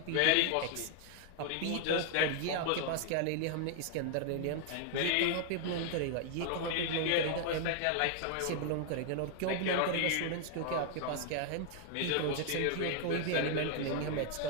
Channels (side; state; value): both; different; correlation 0.00